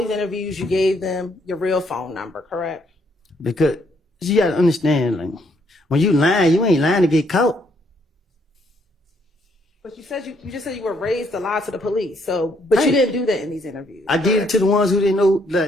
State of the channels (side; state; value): both; normal; correlation 0.70